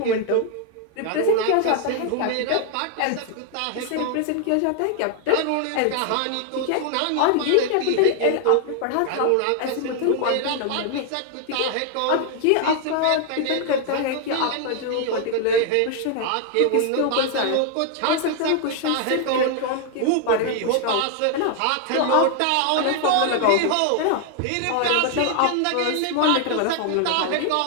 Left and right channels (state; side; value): different; both; correlation 0.00